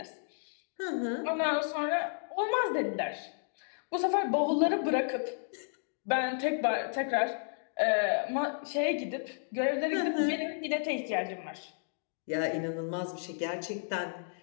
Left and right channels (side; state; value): right; silent; digital silence